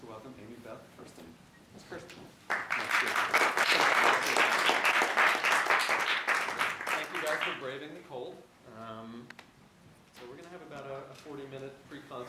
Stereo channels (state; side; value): identical; both; correlation 1.00